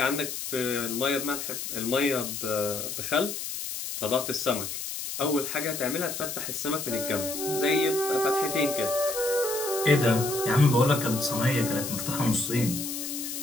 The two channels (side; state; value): left; noise; hiss, 6 dB below the sound